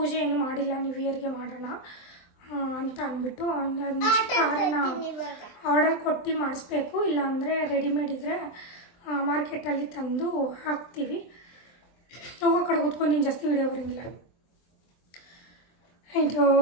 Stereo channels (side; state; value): right; late; 23 ms